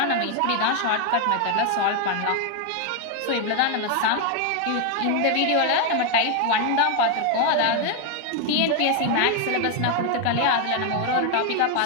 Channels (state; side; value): different; both; correlation 0.01